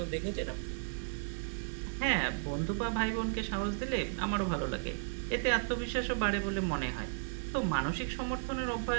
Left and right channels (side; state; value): left; silent; digital silence